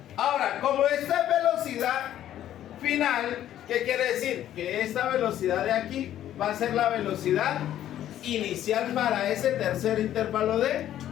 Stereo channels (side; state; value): right; quieter; 11.8 dB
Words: Ahora, como esta es velocidad final, ¿qué quiere decir? Que esta velocidad de aquí va a ser la velocidad inicial para ese tercer intervalo de